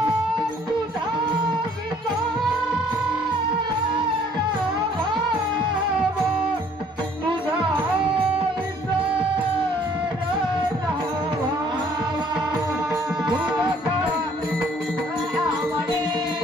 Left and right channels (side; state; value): both; normal; correlation 0.59